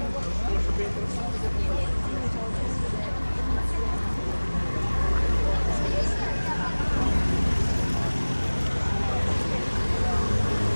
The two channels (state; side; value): inverted; both; correlation -1.00